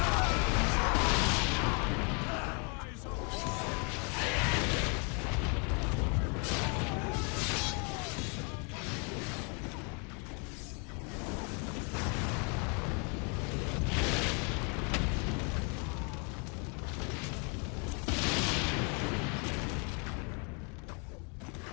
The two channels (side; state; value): right; quieter; 35.8 dB